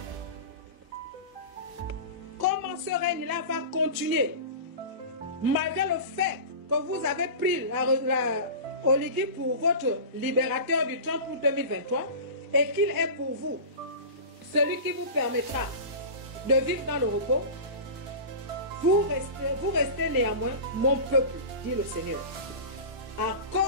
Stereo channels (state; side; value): late; left; 1.0 ms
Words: règne-là va continuer, malgré le fait que vous avez pris Olivier pour votre libérateur du 30 août 2023 et qu'il est pour vous celui qui vous permettra de vivre dans le repos. Vous restez néanmoins mon peuple, dit le Seigneur. À